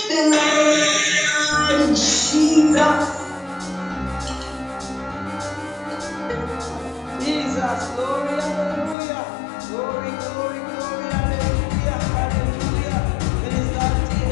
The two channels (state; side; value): drops out; right; at 9.0 s